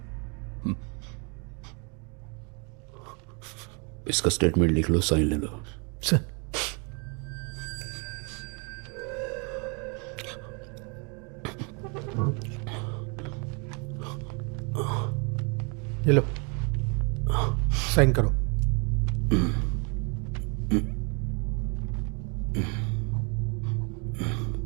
इसका स्टेटमेंट लिख लो, साइन ले लो। सर, ये लो, साइन करो।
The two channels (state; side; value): quieter; left; 34.2 dB